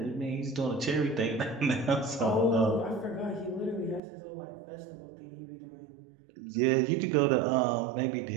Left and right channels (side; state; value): left; drops out; at 4.0 s